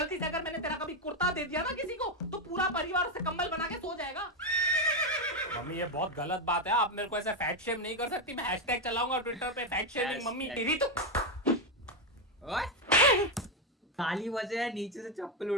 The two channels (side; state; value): both; normal; correlation 0.06